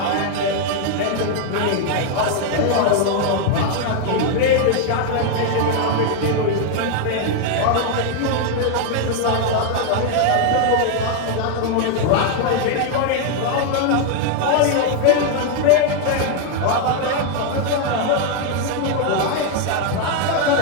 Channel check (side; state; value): both; different; correlation 0.01